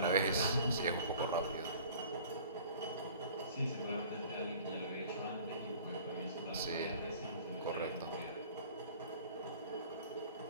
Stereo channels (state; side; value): inverted; both; correlation -0.47